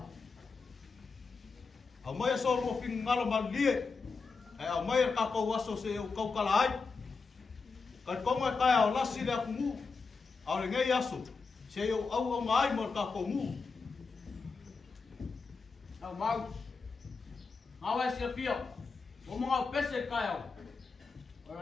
Au mai so ro fin ngalo malie. Ai au mai ka ko waso se o kau kala ai. Ka konga kai au lasi le aku mu. Au le ngai aso. Se o au mai mo ka ko mu. Au mau. Awa se fio. O mo pese kai au.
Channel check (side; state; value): right; quieter; 4.6 dB